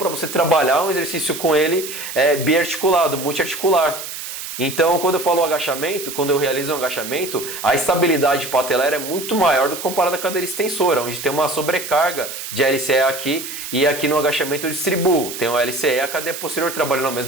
você trabalhar um exercício com ele biarticulado, multiarticular. Então, quando eu falo agachamento, quando eu realizo um agachamento, a estabilidade patelar é muito maior do que comparado à cadeira extensora, onde tem uma sobrecarga de LCE aqui e aqui no agachamento eu distribuo. Tem o LCE e a cadeia posterior trabalhando ao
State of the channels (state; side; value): noise; right; hiss, 8 dB below the sound